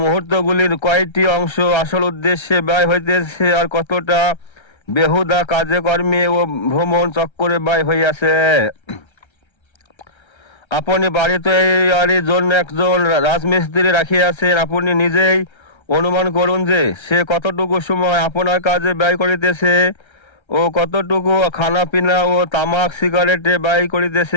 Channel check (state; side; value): late; right; 1.3 ms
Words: মুহূর্তগুলির কয়টি অংশ আসল উদ্দেশ্যে ব্যয় হইতেছে, আর কতটা বেহুদা কাজে কর্মে ও ভ্রমণ চক্করে ব্যয় হইয়াছে। আপনি বাড়িতে এর জন্য একজন রাজমিস্ত্রি রাখিয়াছেন, আপনি নিজেই অনুমান করুন যে সে কতটুকু সময় আপনার কাজে ব্যয় করিতেছে, ও কতটুকু খানা পিনা ও তামাক সিগারেটে ব্যয়